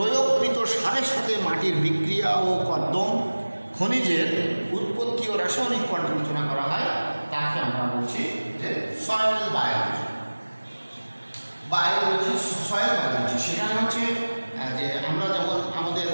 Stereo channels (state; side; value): inverted; both; correlation -1.00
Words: সারের সাথে মাটির বিক্রিয়া ও কর্দম, খনিজের উৎপত্তি ও রাসায়নিক পর্যালোচনা করা হয়, তাকে আমরা বলছি যে সয়েল বায়োলজি। সয়েল বায়োলজি সেখানে হচ্ছে যে আমরা যেমন আমাদের